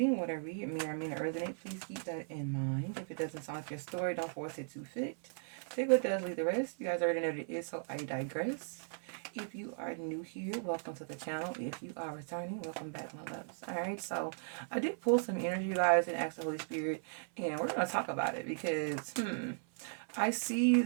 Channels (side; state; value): left; silent; 53 dB below the other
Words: What I read may or may not resonate. Please keep that in mind. If it doesn't sound like your story, don't force it to fit. Take what does, leave the rest. You guys already know what it is, so I digress. If you are new here, welcome to the channel. If you are returning, welcome back, my loves. Alright, so I did pull some energy, you guys, and ask the Holy Spirit, and we're going to talk about it because, I see